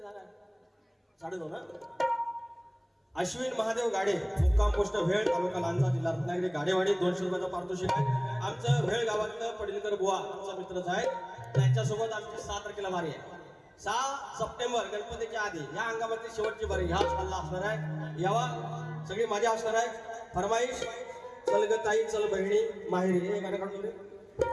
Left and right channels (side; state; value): both; identical; correlation 1.00